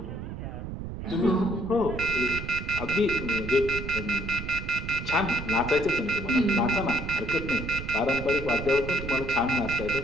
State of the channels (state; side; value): noise; right; rumble, 8 dB below the sound